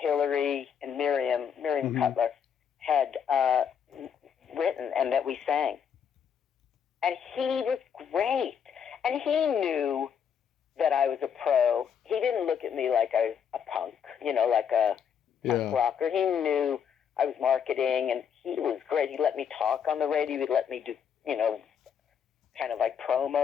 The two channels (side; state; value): right; quieter; 7.7 dB